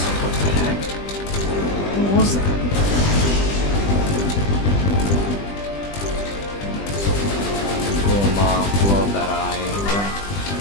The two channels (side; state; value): right; late; 20 ms